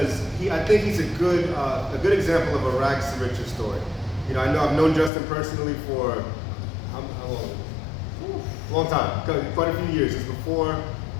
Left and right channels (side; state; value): right; drops out; at 5.1 s